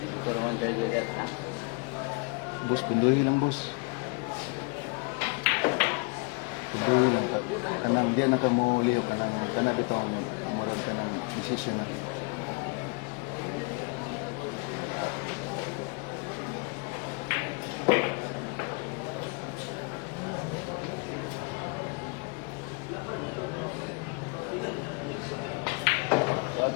Ito naman jagat na. Bus, pinduhin lang bus. Pinduhin lang. Kanang diyan na ka mo liyo. Kanang bitaw mo. Murag ka ng decision na rin.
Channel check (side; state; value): right; quieter; 31.7 dB